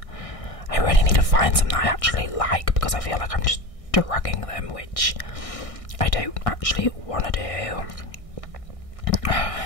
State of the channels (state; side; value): late; right; 1.6 ms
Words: I really need to find some that I actually like, because I feel like I'm just dragging them, which I don't actually want to do.